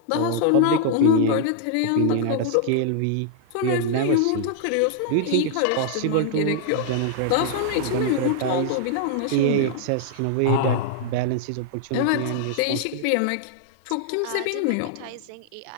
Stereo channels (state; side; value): different; both; correlation -0.01